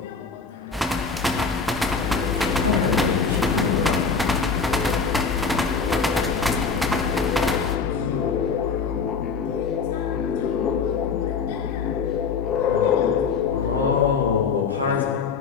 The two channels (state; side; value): quieter; right; 5.3 dB